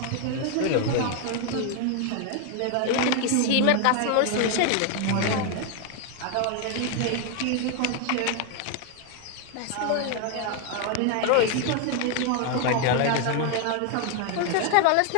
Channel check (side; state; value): both; different; correlation 0.01